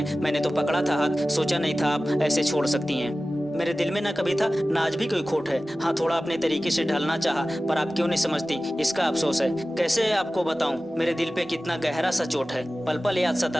मैंने तो पकड़ा था हाथ, सोचा नहीं था आप ऐसे छोड़ सकती हैं। मेरे दिल में ना कभी था ना आज भी कोई खोट है। हाँ, थोड़ा अपने तरीके से ढलना चाहा, पर आप क्यों नहीं समझती, इसका अफसोस है। कैसे आपको बताऊं मेरे दिल पे कितना गहरा सा चोट है। पल पल याद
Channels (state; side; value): normal; both; correlation 0.96